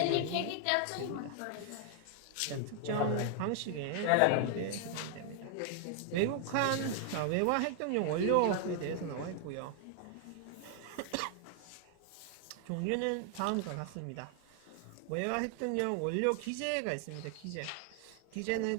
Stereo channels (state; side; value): different; both; correlation 0.00